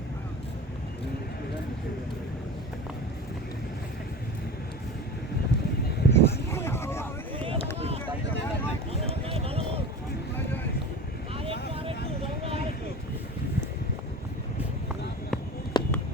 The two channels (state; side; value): normal; both; correlation 0.33